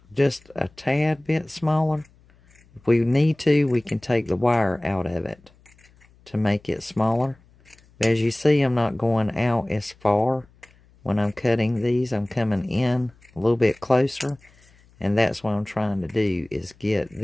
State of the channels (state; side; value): noise; left; hum, 30 dB below the sound